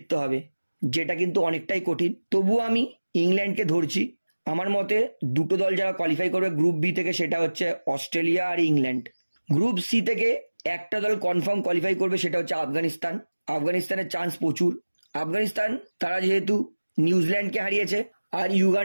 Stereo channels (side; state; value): both; inverted; correlation -1.00